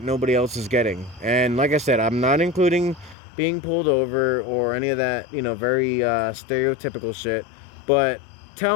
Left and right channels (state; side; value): drops out; right; at 3.2 s